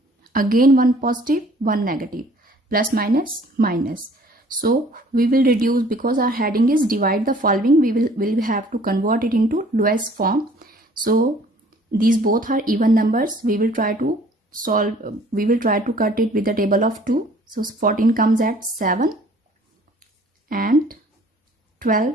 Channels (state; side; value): normal; both; correlation 0.55